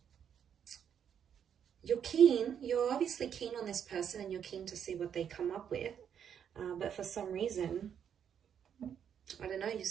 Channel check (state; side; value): quieter; left; 8.4 dB